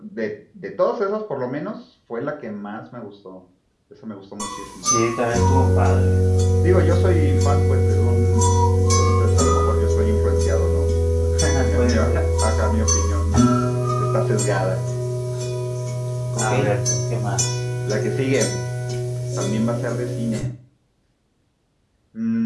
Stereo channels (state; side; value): identical; both; correlation 1.00